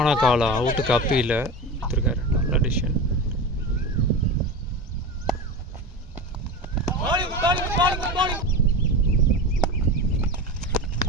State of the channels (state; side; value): normal; both; correlation 0.26